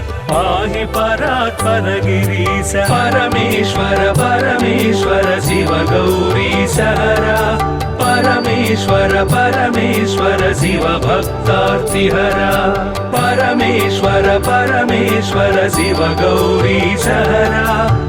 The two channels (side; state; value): both; identical; correlation 1.00